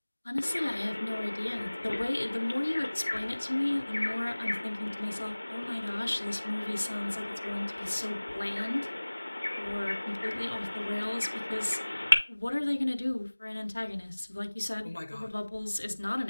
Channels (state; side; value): inverted; both; correlation -1.00